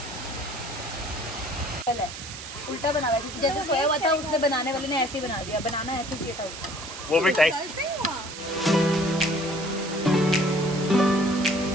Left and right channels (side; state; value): right; noise; hiss, 11 dB below the sound